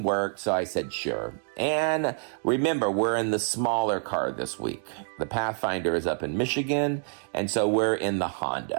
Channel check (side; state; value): left; silent; 56 dB below the other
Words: worked, so I said sure. And remember, we're in the smaller car this week. The Pathfinder is up in Michigan, and so we're in the